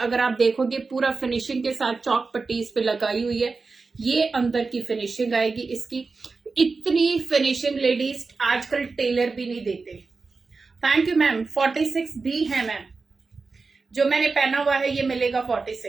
आप देखोगे पूरा फिनिशिंग के साथ चौक पट्टी इस पे लगाई हुई है। ये अंदर की फिनिशिंग आएगी इसकी। इतनी फिनिशिंग लेडीज आजकल टेलर भी नहीं देते। Thank you ma'am. 46 भी है मैम, जो मैंने पहना हुआ है ये मिलेगा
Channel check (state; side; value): quieter; left; 4.2 dB